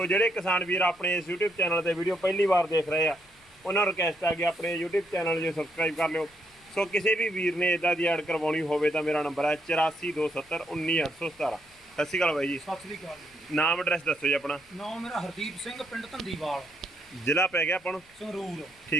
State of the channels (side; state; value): left; noise; rumble, 30 dB below the sound